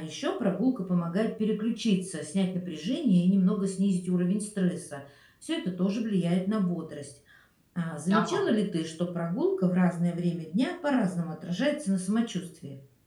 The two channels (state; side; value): identical; both; correlation 1.00